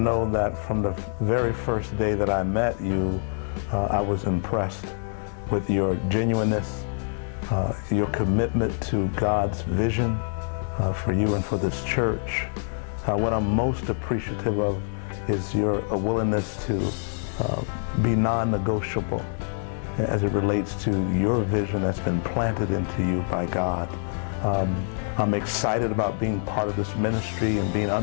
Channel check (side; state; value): right; silent; digital silence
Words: that from the very first day that I met you, I was impressed with your genuineness, your commitment to God's vision for you and for this church. What I'm most appreciative of is your willingness to be non-negotiable as it relates to your vision that's been planted into you by God. I'm excited about being part of this ministry and being